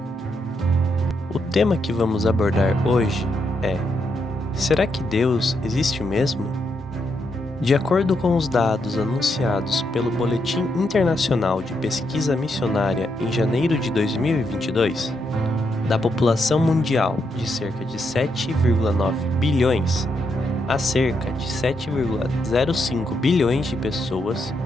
O tema que vamos abordar hoje é: será que Deus existe mesmo? De acordo com os dados anunciados pelo Boletim Internacional de Pesquisa Missionária em janeiro de 2022, da população mundial de cerca de 7,9 bilhões, há cerca de 7,05 bilhões de pessoas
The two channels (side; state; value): both; normal; correlation 0.80